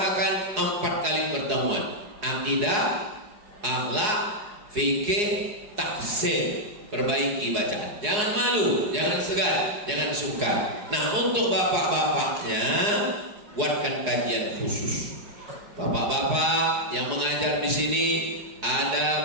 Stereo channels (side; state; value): left; late; 4.8 ms